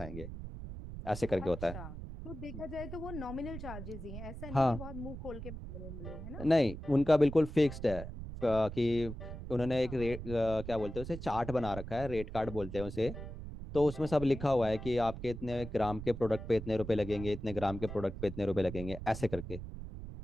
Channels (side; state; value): right; noise; rumble, 9 dB below the sound